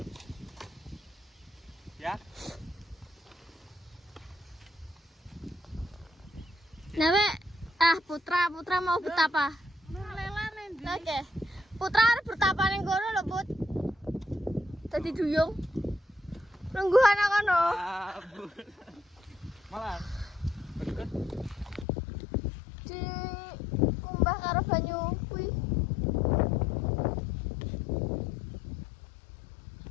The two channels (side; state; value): right; drops out; at 21.9 s